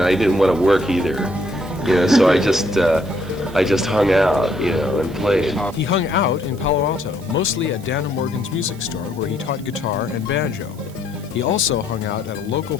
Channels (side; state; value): right; noise; hiss, 24 dB below the sound